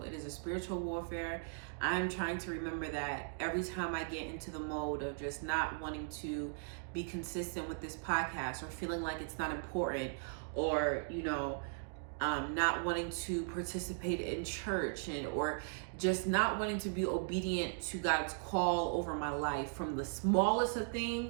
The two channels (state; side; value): silent; left; digital silence